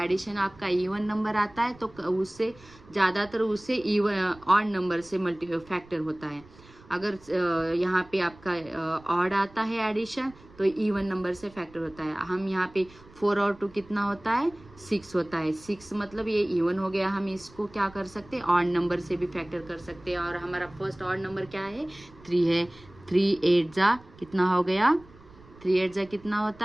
आपका इवन नंबर आता है तो उससे ज़्यादातर उससे इवन ऑड नंबर से फैक्टर होता है। अगर यहाँ पे आपका ऑड आता है एडिशन तो इवन नंबर से फैक्टर होता है। हम यहाँ पे 4 और 2 कितना होता है, 6 होता है। 6 मतलब ये इवन हो गया। हम इसको क्या कर सकते हैं, ऑड नंबर से भी फैक्टर कर सकते हैं। और हमारा फर्स्ट ऑड नंबर क्या है, 3 है। 3 8 जा कितना हो गया, 3 8 जा कितना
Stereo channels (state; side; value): noise; right; rumble, 24 dB below the sound